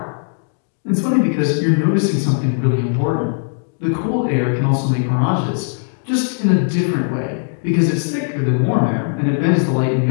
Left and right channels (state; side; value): silent; right; digital silence